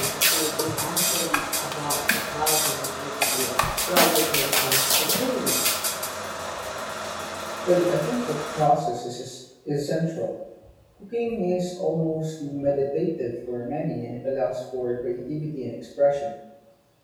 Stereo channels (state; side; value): identical; both; correlation 1.00